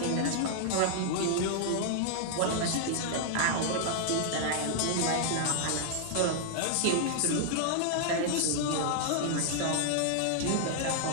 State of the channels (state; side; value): different; both; correlation -0.01